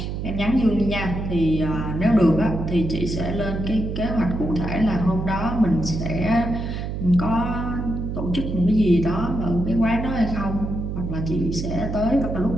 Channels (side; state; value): right; noise; hum, 4 dB below the sound